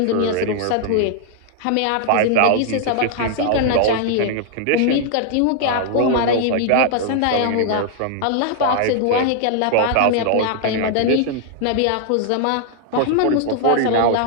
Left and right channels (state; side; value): different; both; correlation 0.00